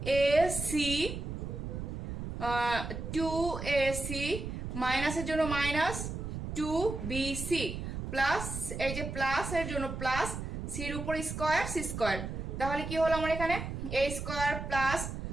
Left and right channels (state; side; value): noise; right; rumble, 6 dB below the sound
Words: মাইনাসের জন্য মাইনাস 2bc প্লাস এই যে প্লাস এর জন্য প্লাস সির উপর স্কোয়ার সি স্কোয়ার। তাহলে কি হলো আমার এখানে A square plus